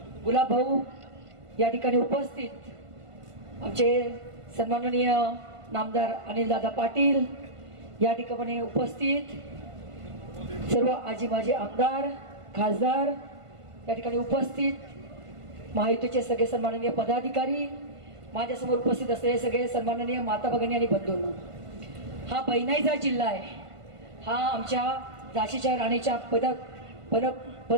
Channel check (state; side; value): late; left; 1.5 ms